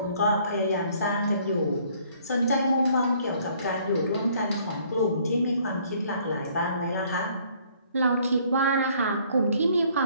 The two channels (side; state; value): both; inverted; correlation -0.61